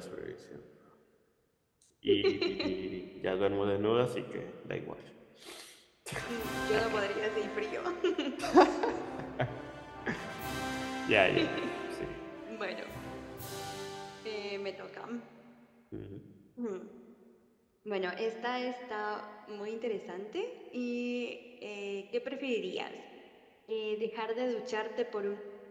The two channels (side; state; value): both; identical; correlation 1.00